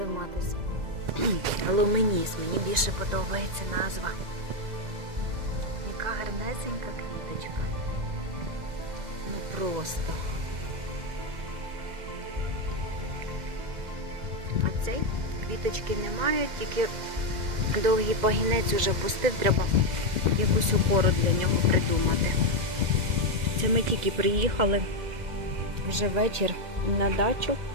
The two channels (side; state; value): left; late; 2.0 ms